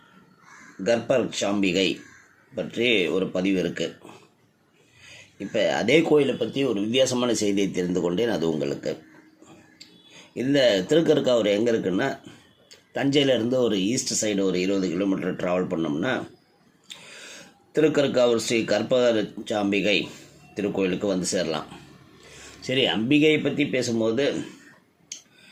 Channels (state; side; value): identical; both; correlation 1.00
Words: கர்ப்பரட்சாம்பிகை பற்றி ஒரு பதிவு இருக்குது. இப்போ அதே கோயிலை பற்றி ஒரு வித்தியாசமான செய்தியை தெரிந்து கொண்டேன். அது உங்களுக்கு இந்த திருக்கற்காவூர் எங்கே இருக்குன்னா, தஞ்சையிலேருந்து ஒரு ஈஸ்ட் சைடு ஒரு 20 கிலோமீட்டர் ட்ராவல் பண்ணோம்னா திருக்கற்காவூர் ஸ்ரீ கர்ப்பரட்சாம்பிகை திருக்கோயிலுக்கு வந்து சேரலாம். சரி, அம்பிகையை பற்றி பேசும்போது